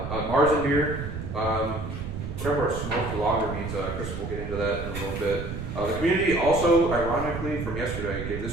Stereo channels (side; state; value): right; noise; rumble, 7 dB below the sound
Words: A Marzen beer. Whatever a smoked lager means. Chris will get into that in a little bit. The community also, ironically, from yesterday, gave